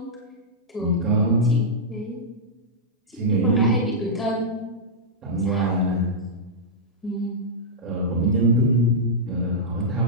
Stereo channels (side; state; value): both; normal; correlation -0.10